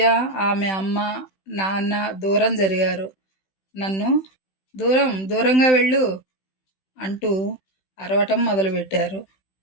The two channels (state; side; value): late; right; 16 ms